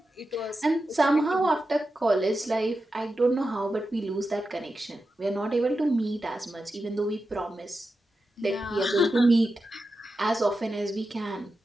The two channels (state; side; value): normal; both; correlation 0.90